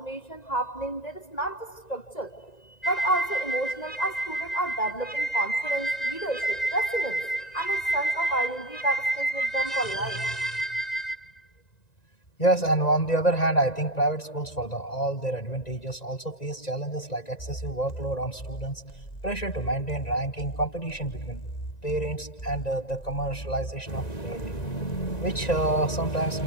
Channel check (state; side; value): late; right; 1.9 ms